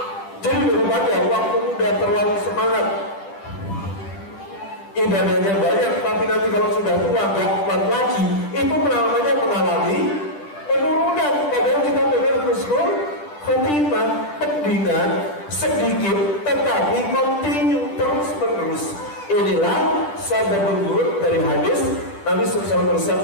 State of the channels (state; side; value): late; right; 10 ms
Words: Jadi daripada waktu muda terlalu semangat, ibadahnya banyak, tapi nanti kalau sudah tua gak kuat lagi, itu namanya mengalami penurunan. Padahal kita pengen husnul khotimah, mendingan sedikit tetapi kontinu terus menerus. Inilah sabda berurut dari hadis Nabi SAW